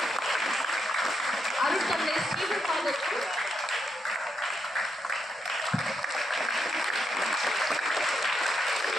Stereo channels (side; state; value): both; normal; correlation 0.80